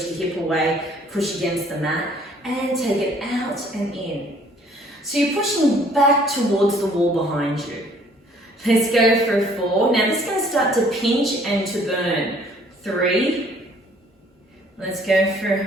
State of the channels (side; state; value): both; normal; correlation 0.59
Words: the hip away, push against the mat, and take it out and in. So you're pushing back towards the wall behind you. Let's go for 4. Now this is going to start to pinch and to burn. 3. Let's go